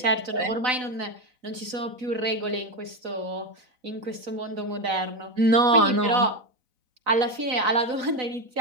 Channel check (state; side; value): late; left; 4.0 ms